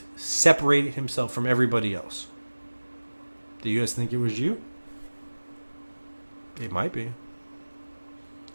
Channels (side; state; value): both; inverted; correlation -1.00